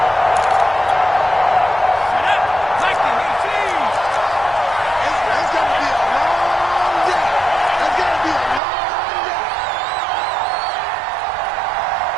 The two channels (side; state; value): left; drops out; at 8.6 s